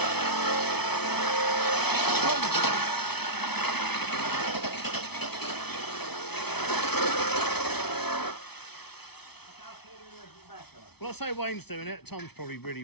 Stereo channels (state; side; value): late; right; 0.98 ms